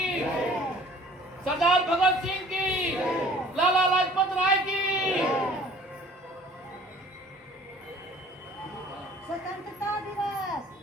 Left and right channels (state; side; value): normal; both; correlation 0.51